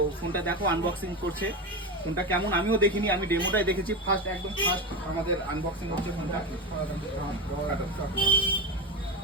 ফোনটা দেখো আনবক্সিং করছে। ফোনটা কেমন আমিও দেখিনি, আমি ডেমোটাই দেখেছি, একদম ফার্স্ট আমাদের আনবক্সিং হচ্ছে ফোনটা।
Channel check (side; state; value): both; normal; correlation 0.19